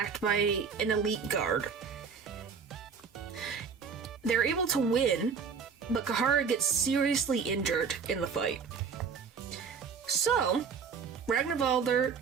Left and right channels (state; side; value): quieter; left; 6.0 dB